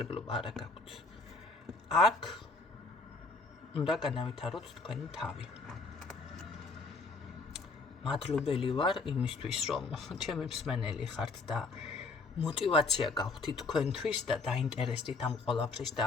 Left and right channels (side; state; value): right; quieter; 3.9 dB